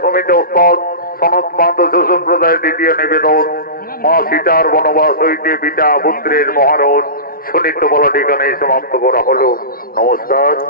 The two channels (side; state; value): right; late; 0.43 ms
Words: সমিতি ওস্তাদ সনত মাদ্রাস সম্প্রদায়ের দ্বিতীয় নিবেদন, মা সীতার বনবাস হইতে পিতা পুত্রের মহারণ সুনিত্য বলা ঠিকানায় সমাপ্ত করা হলো। নমস্কার,